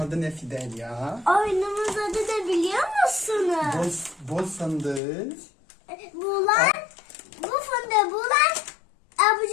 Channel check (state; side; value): drops out; right; at 5.0 s